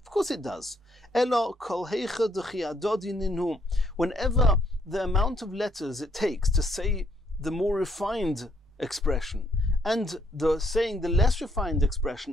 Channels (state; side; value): normal; both; correlation 0.70